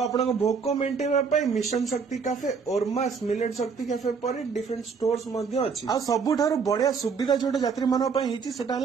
भोक मेन्टेन मिशन शक्ति कैफे ओरमास मिलेट शक्ति कैफे पर डिफरेंट स्टोर्स अच्छी आ सबुठार बढ़िया सुविधा जो यात्री मानक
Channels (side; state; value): left; quieter; 5.6 dB